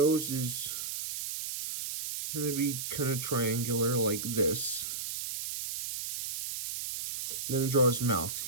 is going to be kind of triangular like this. Then draw his mouth.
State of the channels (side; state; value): right; noise; hiss, 5 dB below the sound